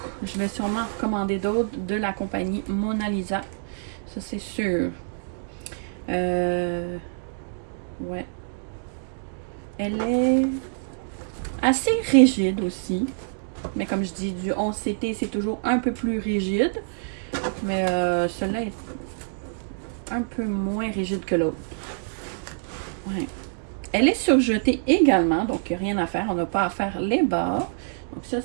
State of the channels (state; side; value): silent; left; digital silence